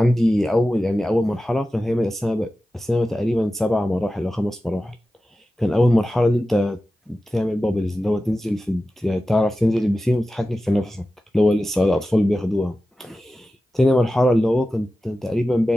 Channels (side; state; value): both; normal; correlation 0.94